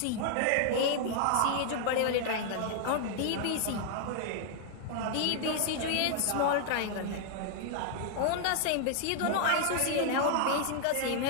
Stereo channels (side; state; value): both; different; correlation 0.00